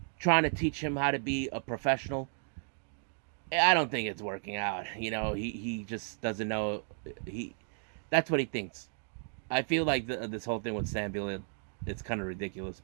trying to teach him how to be a professional. I don't think it's working out. You know, he just doesn't know. That's what he thinks. I feel like this whole thing with Sam Beal, it's kind of ridiculous,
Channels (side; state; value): left; silent; 55 dB below the other